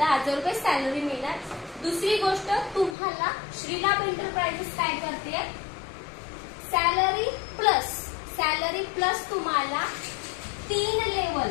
रुपये सॅलरी मिळणार। दुसरी गोष्ट, तुम्हाला श्रीलाभ एंटरप्राइजेस काय करते? सॅलरी प्लस तुम्हाला 3 लेवल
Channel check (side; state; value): right; drops out; at 3.0 s